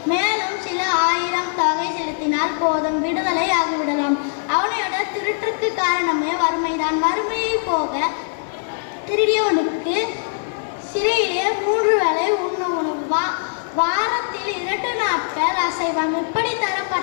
மேலும் சில 1000 தொகை செலுத்தினால் போதும், விடுதலை ஆகிவிடலாம். அவனையோட திருட்டுக்கு காரணமே வறுமைதான். வறுமையை போக திருடியவனுக்கு சிறையிலே 3 வேளை உண்ண உணவு, வாரத்தில் 2 நாட்கள் அசைவம், இப்படி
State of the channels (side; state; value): right; silent; 62 dB below the other